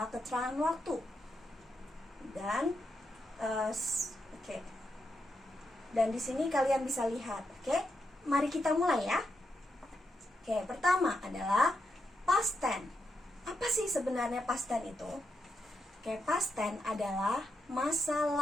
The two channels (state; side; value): normal; both; correlation 0.84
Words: keterangan waktu. Dan Dan di sini kalian bisa lihat, Mari kita mulai ya. Pertama adalah past tense. Apa sih sebenarnya past tense itu? Past tense adalah masa